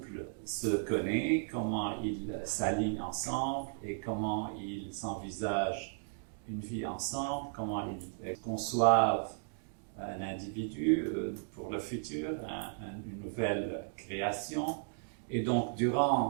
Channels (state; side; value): silent; left; digital silence